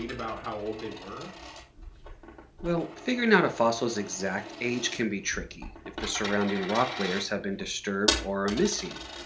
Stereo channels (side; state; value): both; identical; correlation 1.00